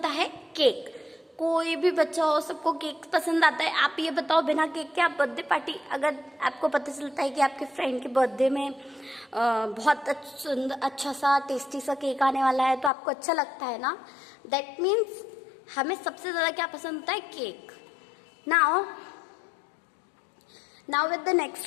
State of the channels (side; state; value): right; drops out; at 12.9 s